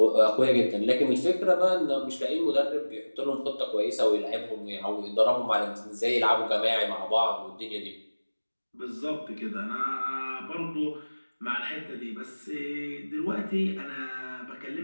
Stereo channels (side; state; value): both; inverted; correlation -1.00